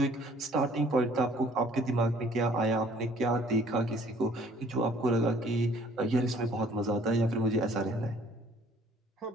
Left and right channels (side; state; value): both; normal; correlation 0.57